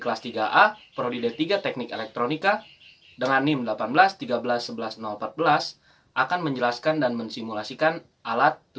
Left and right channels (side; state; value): both; identical; correlation 1.00